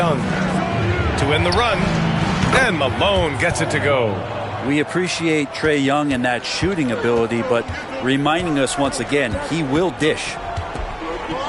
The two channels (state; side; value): identical; both; correlation 1.00